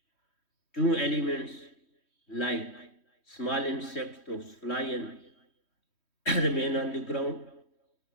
2 elements like small insects, those fly and remain on the ground.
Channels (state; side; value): late; right; 3.1 ms